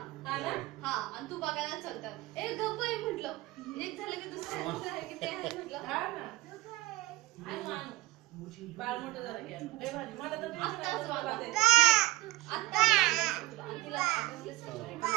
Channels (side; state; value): left; quieter; 19.6 dB